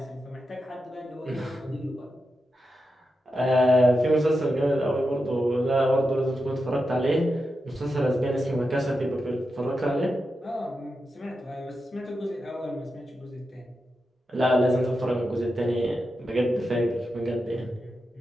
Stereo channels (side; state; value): both; normal; correlation 0.89